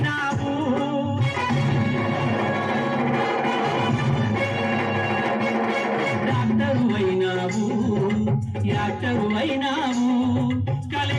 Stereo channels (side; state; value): both; identical; correlation 1.00